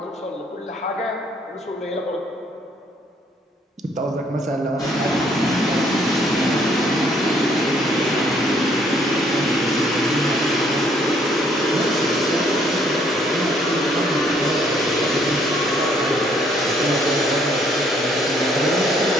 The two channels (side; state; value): both; normal; correlation 0.65